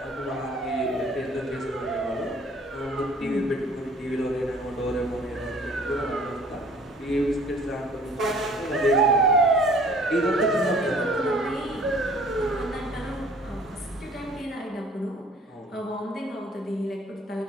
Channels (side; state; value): both; normal; correlation 0.53